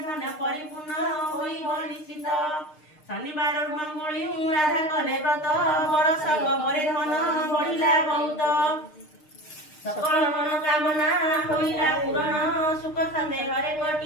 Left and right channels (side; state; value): right; late; 6.6 ms